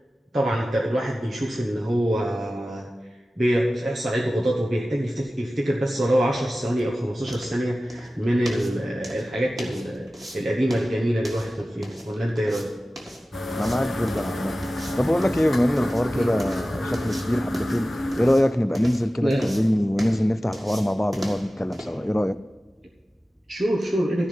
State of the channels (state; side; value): normal; both; correlation 0.96